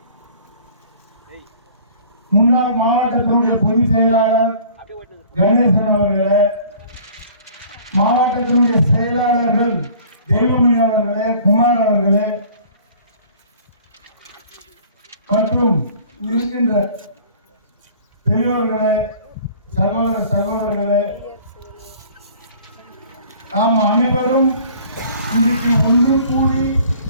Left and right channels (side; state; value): both; inverted; correlation -0.49